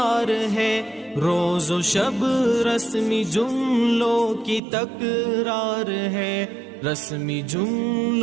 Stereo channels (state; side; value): drops out; left; at 4.6 s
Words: ہے، روز و شب رسمی جملوں کی تکرار ہے، رسمی